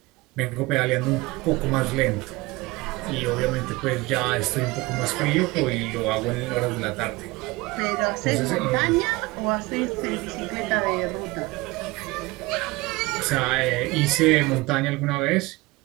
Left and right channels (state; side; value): quieter; left; 21.9 dB